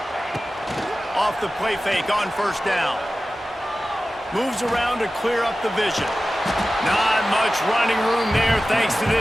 Off the play fake on 1st down. Moves around to clear up the vision. Not much running room there thanks to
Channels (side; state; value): both; normal; correlation 0.95